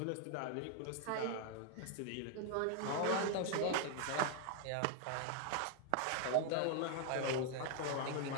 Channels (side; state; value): both; different; correlation 0.00